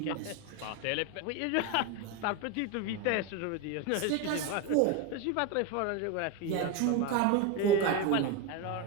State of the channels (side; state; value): both; different; correlation 0.03